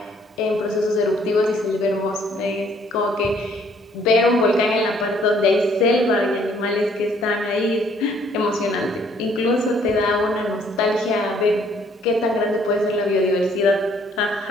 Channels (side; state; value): both; normal; correlation 0.63